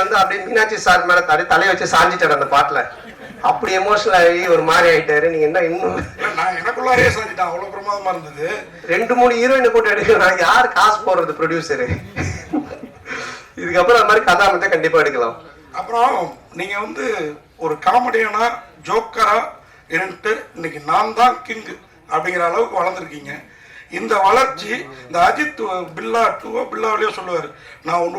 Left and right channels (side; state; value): both; identical; correlation 1.00